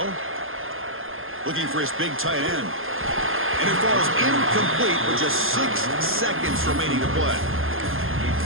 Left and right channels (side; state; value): left; late; 0.60 ms